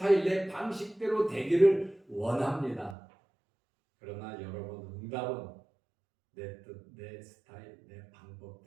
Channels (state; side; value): drops out; left; at 3.0 s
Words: 내 방식대로 되기를 원합니다. 그러나 여러분, 응답은 내 뜻, 내 스타일, 내